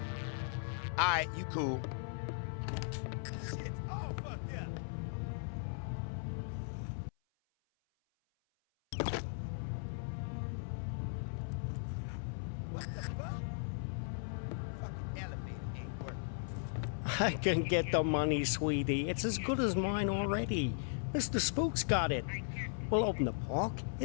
Alright, you cool. Shit, all fucked up. What the fuck? Fucking elevator ain't working. I can get the money, sweetie. It's as good as mine already. Mr. Spook's got it. We'll open the park.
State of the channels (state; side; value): silent; right; 53 dB below the other